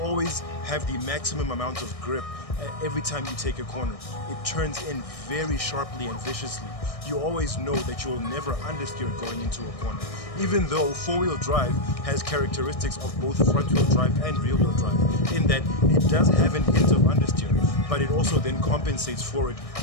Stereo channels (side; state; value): right; late; 1.6 ms